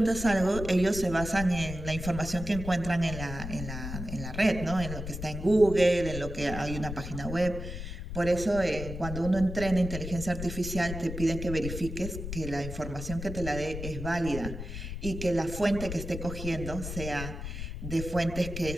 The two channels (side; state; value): left; noise; rumble, 7 dB below the sound